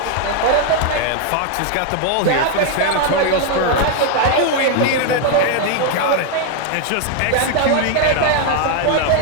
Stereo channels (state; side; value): different; both; correlation 0.00